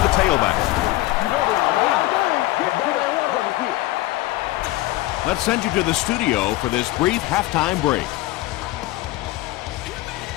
tailback. Let's send you to the studio for this brief halftime break.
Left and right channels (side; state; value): right; quieter; 17.6 dB